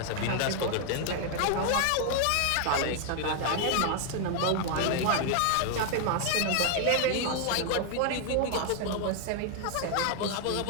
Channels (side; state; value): both; different; correlation 0.00